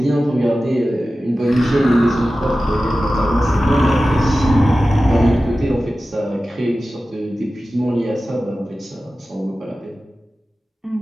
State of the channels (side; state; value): both; normal; correlation 0.95